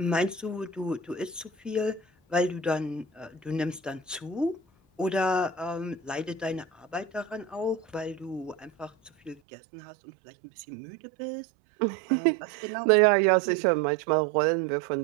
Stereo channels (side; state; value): left; drops out; at 9.4 s